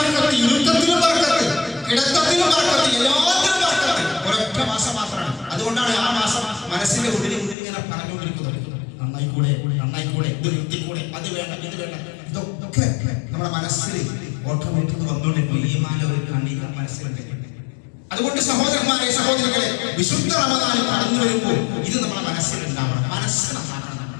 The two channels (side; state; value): right; drops out; at 7.6 s